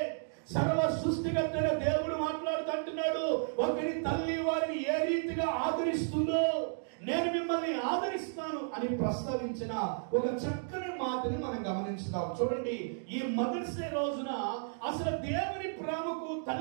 సర్వ సృష్టికర్తైన దేవుడు మాట్లాడుతుంటున్నాడు. ఒకరి తల్లి వారిని ఏ రీతిగా ఆదరిస్తుందో నేను మిమ్మల్ని ఆదరిస్తాను అని ప్రస్తావించిన ఒక చక్కని మాటని మనం గమనించుదాం. చూడండి, ఈ మదర్స్ డే రోజున అసలు దేవుని ప్రేమకు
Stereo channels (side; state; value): left; silent; digital silence